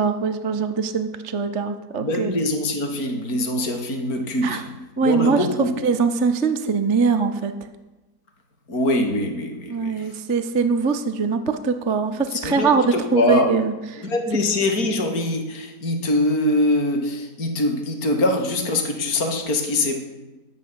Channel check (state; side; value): late; right; 4.4 ms